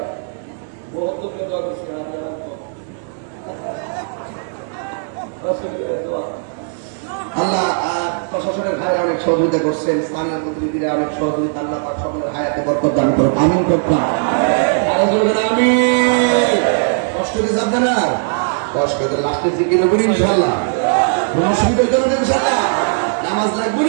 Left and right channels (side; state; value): left; silent; digital silence